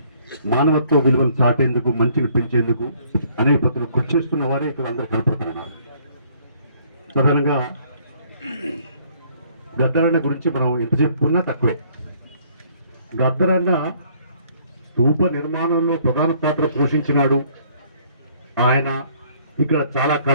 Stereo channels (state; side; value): inverted; both; correlation -0.62